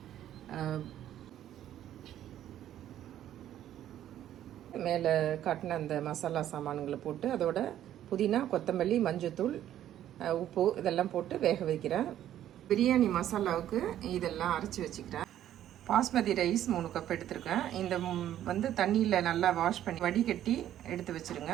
மேலே காட்டின அந்த மசாலா சாமான்களை போட்டு அதோட புதினா, கொத்தமல்லி, மஞ்சத்தூள், உப்பு இதெல்லாம் போட்டு வேக வைக்கிறேன். பிரியாணி மசாலாவுக்கு இதெல்லாம் அரைச்சி வச்சுக்கிறேன். பாஸ்மதி ரைஸ் 3 கப் எடுத்துருக்கேன். இந்த வந்து தண்ணியில் நல்லா வாஷ் பண்ணி வடிகட்டி எடுத்து வச்சுருங்க.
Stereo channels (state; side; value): quieter; left; 11.7 dB